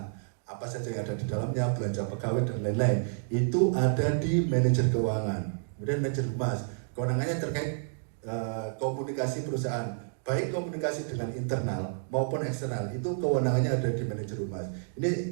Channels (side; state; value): left; silent; digital silence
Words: Apa saja yang ada di dalamnya, belanja pegawai dan lain-lain. Itu ada di manajer keuangan. Kemudian manajer humas, kewenangannya terkait komunikasi perusahaan. Baik komunikasi dengan internal maupun eksternal, itu kewenangannya ada di manajer humas.